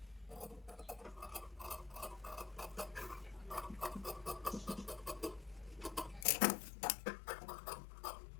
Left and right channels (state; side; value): drops out; right; at 6.2 s